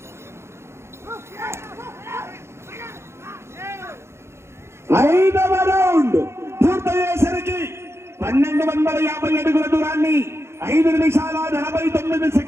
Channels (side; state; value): left; late; 0.13 ms